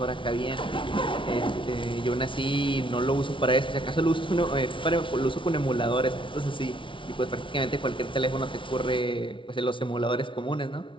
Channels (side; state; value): right; late; 0.25 ms